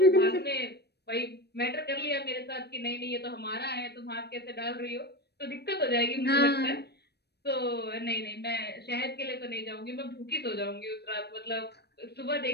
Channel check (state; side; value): late; right; 0.47 ms